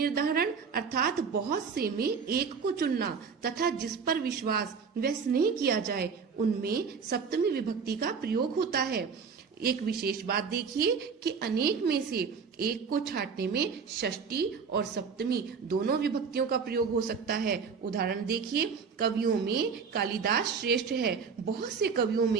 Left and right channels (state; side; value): quieter; left; 5.8 dB